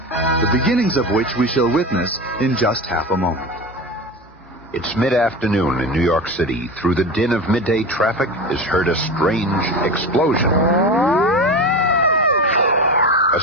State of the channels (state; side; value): normal; both; correlation 0.26